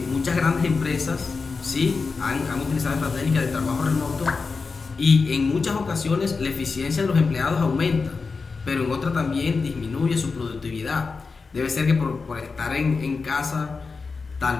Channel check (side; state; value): right; quieter; 4.6 dB